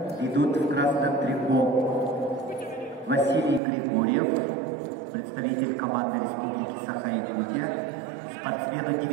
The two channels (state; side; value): drops out; left; at 3.6 s